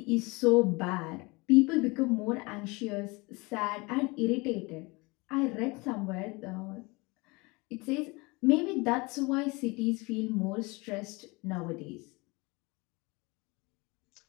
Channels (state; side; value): quieter; right; 25.6 dB